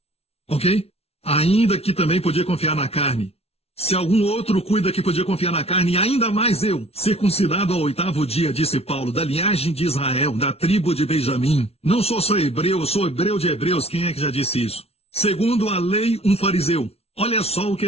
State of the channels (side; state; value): right; late; 0.30 ms